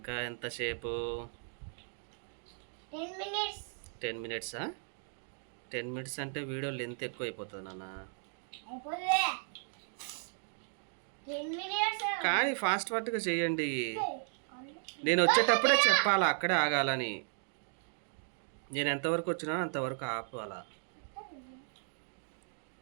ఎంతసేపు? 10 మినిట్సా? 10 మినిట్స్ అంటే వీడియో లెంత్ ఎక్కువ అయిపోతుంది నాన్న. కానీ ఫాస్ట్గా చేయండి. నేను వచ్చేటప్పుడే చెప్పాలా, అక్కడే ఆగాలని. నేను ఎంతవరకు వచ్చినా అంతవరకు ఆపాలా.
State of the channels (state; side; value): silent; left; 54 dB below the other